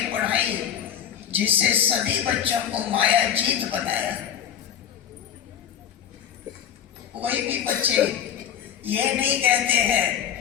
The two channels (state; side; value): quieter; right; 9.5 dB